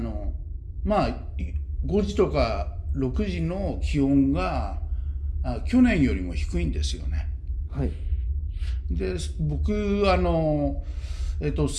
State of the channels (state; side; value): identical; both; correlation 1.00